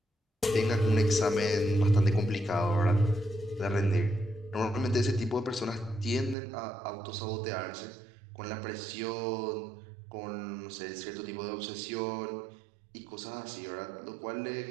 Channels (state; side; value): drops out; left; at 6.4 s